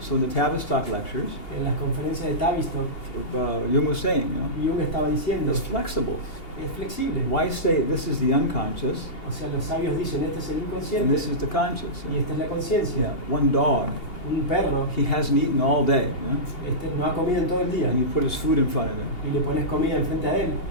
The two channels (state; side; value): late; right; 2.8 ms